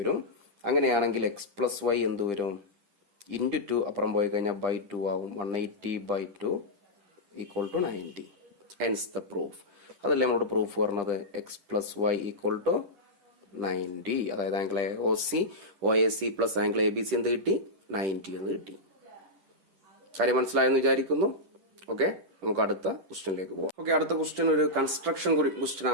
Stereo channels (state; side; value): late; left; 10 ms